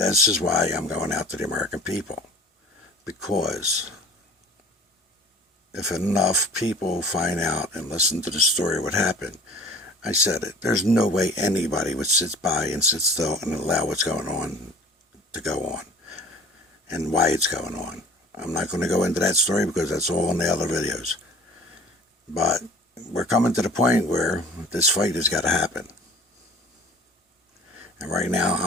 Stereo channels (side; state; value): both; normal; correlation 0.45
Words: is why I'm going out to the American people. Because if enough people find out and listen to the story of what happened, I said it, there's no way anybody would sit by and sit still and allow what's going on to go on and why it's going on. I'm not going to go into that story because that's all in the other videos. But we're coming to the point where this fight has got to happen. And right now,